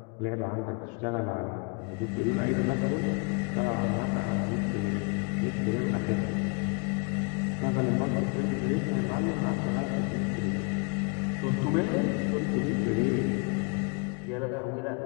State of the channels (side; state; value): right; quieter; 32.4 dB